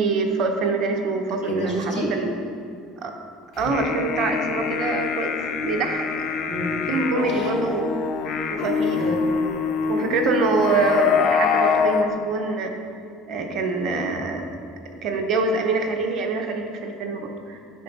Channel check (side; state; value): both; normal; correlation 0.41